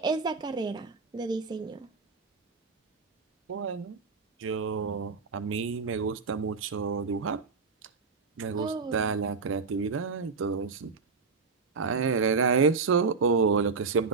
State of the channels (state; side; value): quieter; left; 4.8 dB